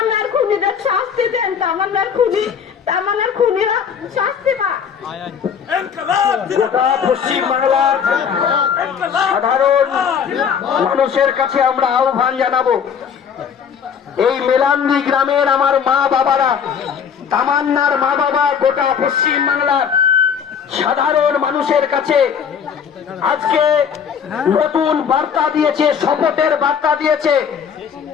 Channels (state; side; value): quieter; right; 7.3 dB